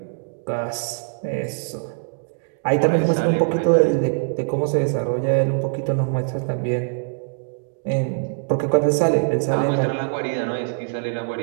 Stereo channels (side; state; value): left; silent; digital silence